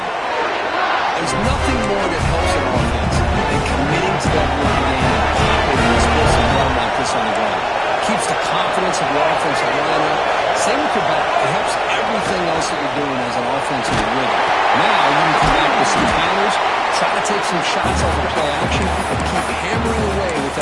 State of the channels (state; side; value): identical; both; correlation 1.00